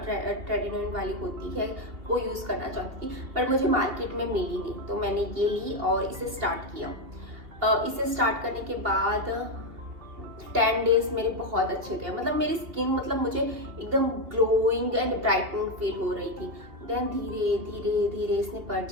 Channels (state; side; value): late; left; 2.8 ms